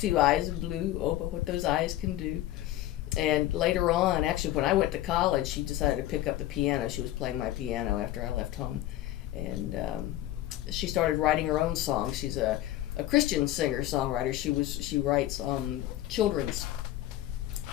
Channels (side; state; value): right; quieter; 14.3 dB